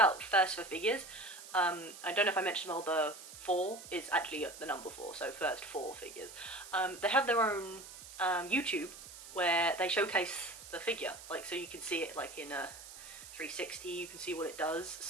First for Figures, I don't know if I mentioned, well, the 4 is actually the number 4, so First 4 Figures. They have their own YouTube where they showcase the figure, like, so you can see it like in a 360, you can see what it does,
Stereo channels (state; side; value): noise; right; hiss, 15 dB below the sound